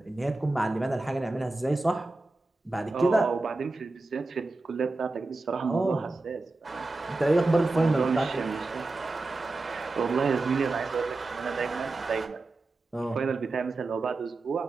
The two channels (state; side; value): quieter; left; 3.2 dB